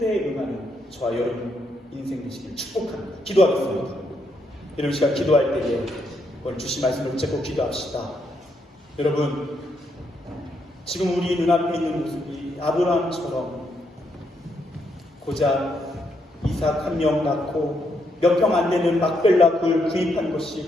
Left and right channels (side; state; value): both; normal; correlation 0.77